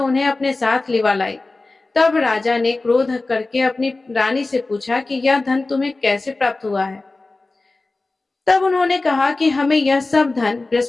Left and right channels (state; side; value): quieter; right; 3.3 dB